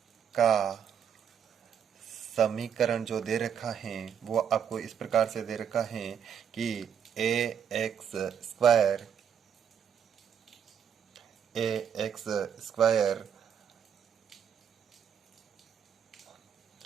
का समीकरण जो दे रखा है वो आपको इस प्रकार से दे रखा है कि ax square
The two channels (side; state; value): left; quieter; 8.1 dB